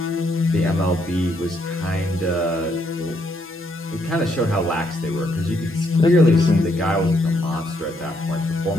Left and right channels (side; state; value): both; normal; correlation 0.74